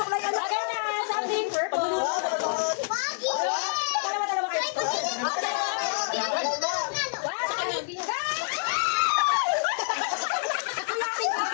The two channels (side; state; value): right; silent; digital silence